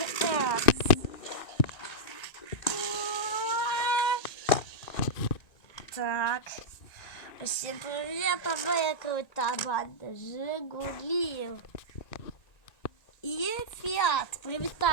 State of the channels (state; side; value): late; right; 1.9 ms